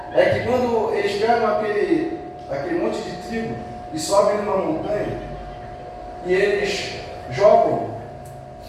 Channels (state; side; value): identical; both; correlation 1.00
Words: é que quando eles pegam aquele monte de trigo e sobem numa montanha e eles jogam